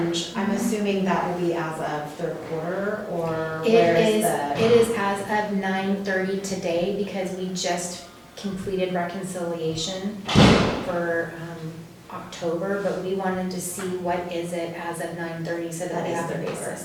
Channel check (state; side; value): identical; both; correlation 1.00